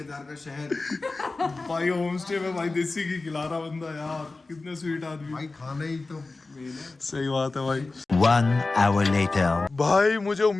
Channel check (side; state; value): right; quieter; 3.5 dB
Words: का शहद। भाई होम स्टे में भाई देसी घी खिला रहा बंदा यार, कितने स्वीट आदमी। भाई खाना ही तो मेन है। सही बात है भाई। 1 hour later. भाई मुझे